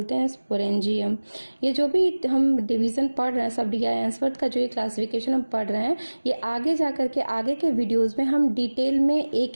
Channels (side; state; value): both; inverted; correlation -1.00